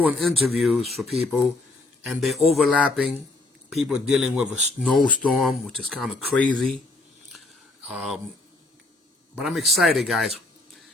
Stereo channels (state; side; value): quieter; right; 3.1 dB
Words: interviews for people, and they're overlapping. People dealing with a snowstorm, which is kind of crazy. But I'm excited, guys.